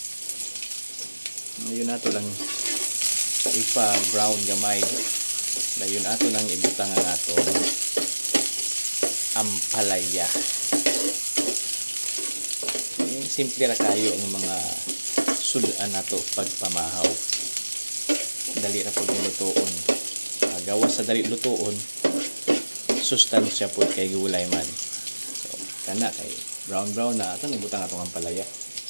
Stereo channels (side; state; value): both; inverted; correlation -1.00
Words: Ngayon ato lang ipa-brown gamay. Ngayon ato nang ibutang ang atong ampalaya. Simple ra kayo ang mga sudan nato pagpamahaw. Dali ra pud lutoon. Gawas sa dali lutoon, sustansya pud kay gulay man. Kana kay brown na ato nibutang atong ampalaya.